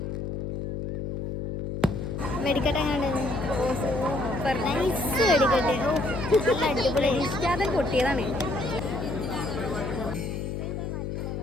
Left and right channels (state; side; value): noise; left; hum, 4 dB below the sound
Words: വെടിക്കെട്ട് എങ്ങനെയുണ്ട്? സൂപ്പർ നൈസ് വെടിക്കെട്ട്. നല്ല അടിപൊളി. ഇഷ്ടാതെ പൊട്ടിയതാണ്.